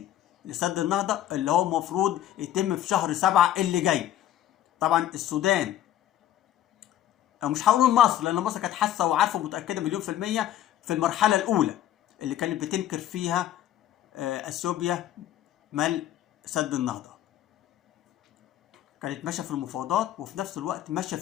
لسد النهضه اللي هو المفروض يتم في شهر 7 اللي جاي. طبعا السودان، او مش هقول مصر لان مصر كانت حاسه وعارفه ومتاكده مليون في الميه في المرحله الاولى اللي كانت بتنكر فيها اثيوبيا ملء سد النهضه، كانت ماشيه في المفاوضات وفي نفس الوقت ماشيه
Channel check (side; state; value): right; quieter; 12.1 dB